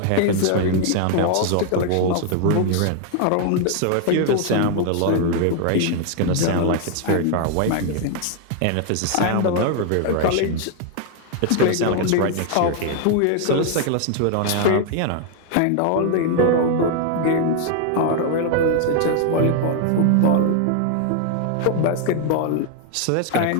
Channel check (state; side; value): different; both; correlation 0.00